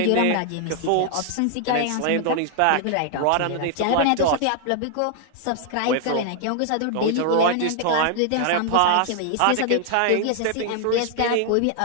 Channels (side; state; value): both; different; correlation 0.00